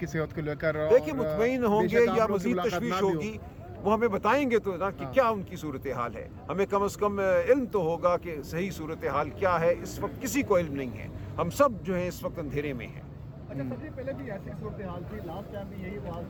صحت کو لے کر؟ دیکھیے مطمئن ہوں گے یا مزید تشویش ہوگی وہ ہمیں بتائیں گے تو نا کہ کیا ان کی صورتحال ہے. ہمیں کم از کم علم تو ہوگا کہ صحیح صورتحال کیا ہے. اس وقت کسی کو علم نہیں ہے، ہم سب جو ہیں اس وقت اندھیرے میں ہیں. اچھا سر جی، پہلے بھی ایسی صورتحال تھی، لاسٹ ٹائم بھی یہی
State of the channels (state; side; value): identical; both; correlation 1.00